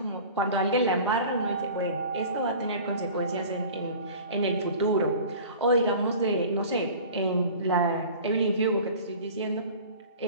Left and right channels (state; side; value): inverted; both; correlation -0.41